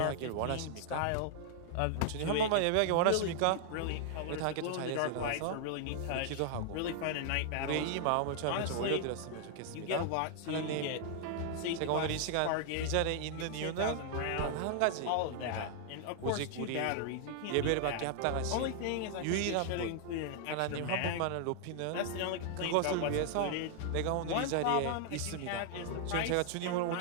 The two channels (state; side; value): different; both; correlation 0.00